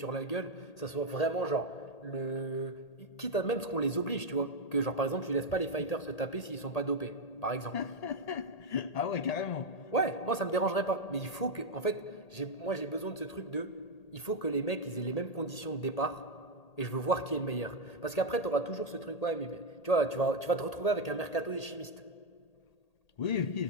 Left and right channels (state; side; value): late; right; 1.8 ms